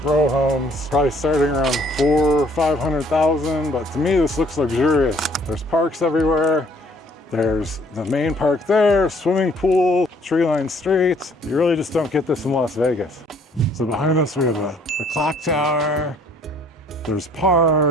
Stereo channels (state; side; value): normal; both; correlation 0.60